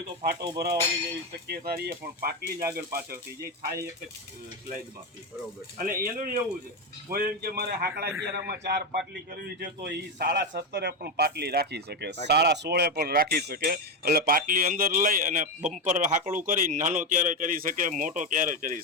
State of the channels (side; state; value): both; normal; correlation 0.10